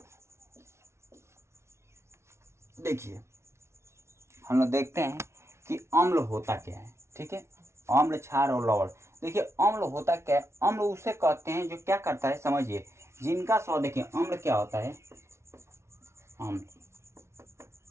देखिए, हम लोग देखते हैं कि अम्ल होता क्या है। ठीक है, अम्ल, क्षार और लवण। देखिए, अम्ल होता क्या है? अम्ल उसे कहते हैं जो क्या करता है, समझिए, जिनका स्वाद। देखिए, अम्ल क्या होता है? अम्ल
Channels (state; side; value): late; left; 0.13 ms